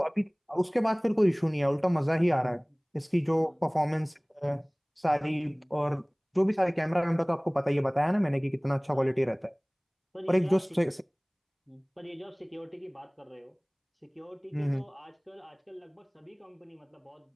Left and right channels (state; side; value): identical; both; correlation 1.00